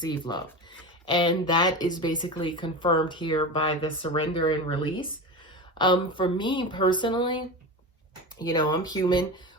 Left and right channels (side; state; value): both; normal; correlation 0.26